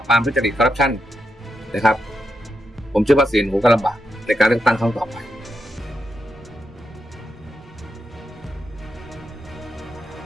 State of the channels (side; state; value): both; normal; correlation 0.85